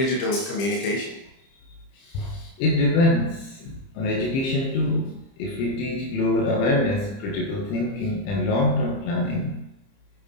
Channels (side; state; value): right; late; 30 ms